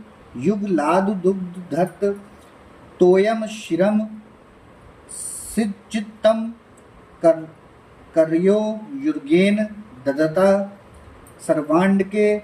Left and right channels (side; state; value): both; identical; correlation 1.00